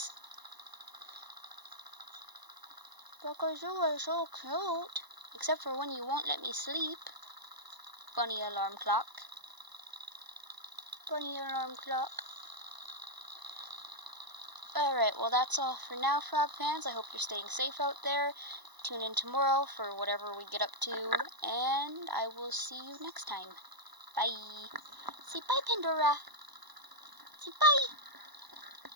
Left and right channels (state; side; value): late; left; 1.0 ms